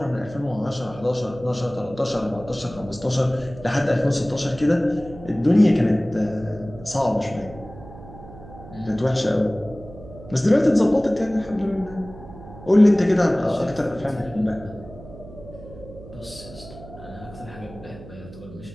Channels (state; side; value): noise; right; hum, 17 dB below the sound